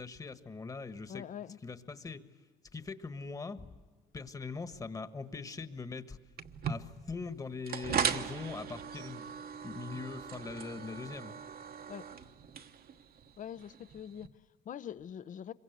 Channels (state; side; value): normal; both; correlation 0.31